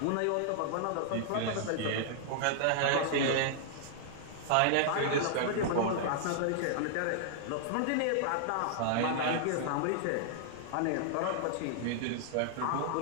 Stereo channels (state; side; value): different; both; correlation -0.01